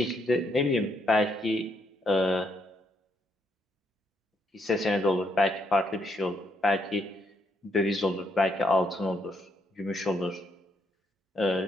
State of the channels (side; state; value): both; normal; correlation 0.75